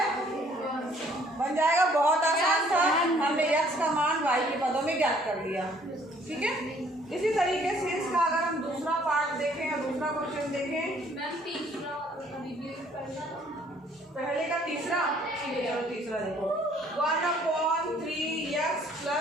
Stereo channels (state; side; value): normal; both; correlation 0.61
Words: बन जाएगा, बहुत आसान था, हमने x का मान y के पदों में ज्ञात कर लिया। ठीक है, इसी तरीके से इसका अगर हम दूसरा पार्ट देखें या दूसरा क्वेश्चन देखें, पहले का तीसरा, चलो तीसरा देखो 1/3x